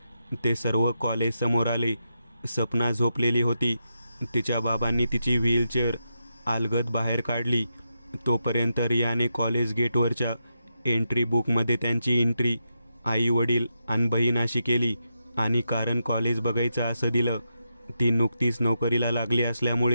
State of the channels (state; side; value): inverted; both; correlation -0.85